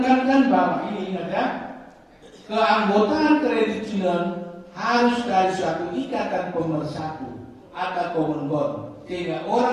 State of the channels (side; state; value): both; identical; correlation 1.00